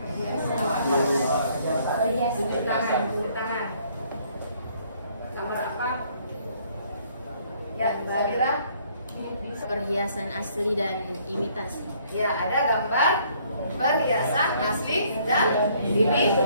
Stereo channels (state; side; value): inverted; both; correlation -0.63